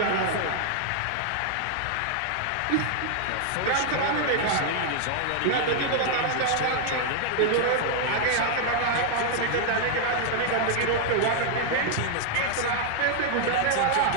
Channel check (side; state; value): both; different; correlation -0.01